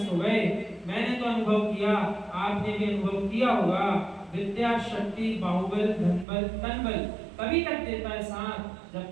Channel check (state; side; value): drops out; left; at 6.2 s